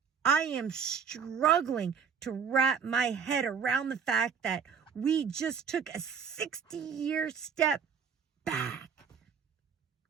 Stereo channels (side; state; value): left; quieter; 6.8 dB